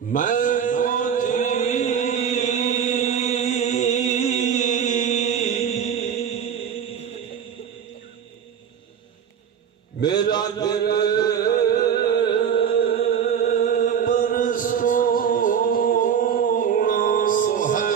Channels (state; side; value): quieter; left; 8.0 dB